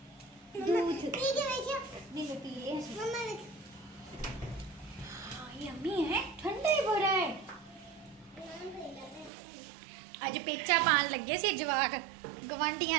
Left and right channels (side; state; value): left; drops out; at 9.3 s